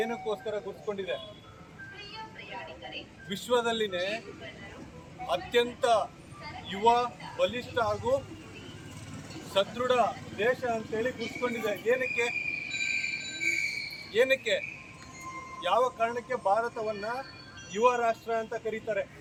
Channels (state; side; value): identical; both; correlation 1.00